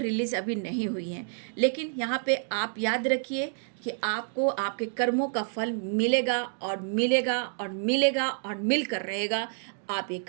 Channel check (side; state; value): left; silent; digital silence